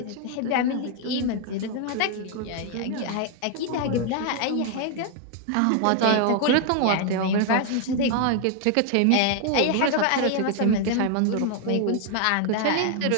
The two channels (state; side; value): different; both; correlation 0.00